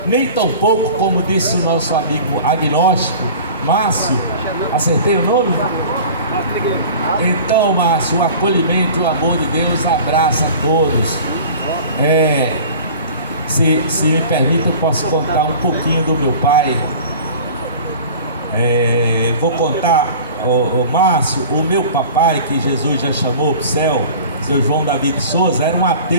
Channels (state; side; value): inverted; both; correlation -0.41